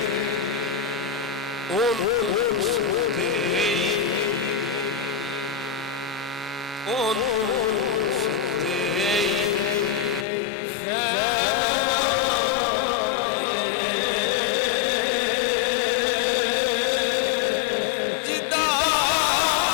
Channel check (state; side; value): drops out; right; at 10.2 s